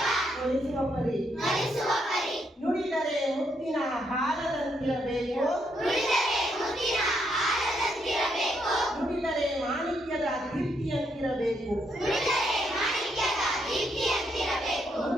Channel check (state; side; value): normal; both; correlation 0.76